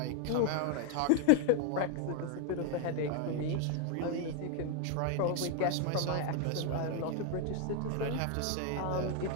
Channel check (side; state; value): both; different; correlation 0.00